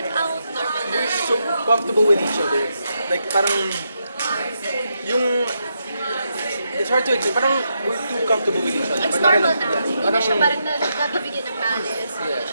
out, normal na... we're so comfortable with each other. Like, parang... Yung... It's hard to explain. Parang we're too comfortable with each other. It's normal na. Hindi na siya parang nabibigyan ng malice. Hindi na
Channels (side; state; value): both; inverted; correlation -0.82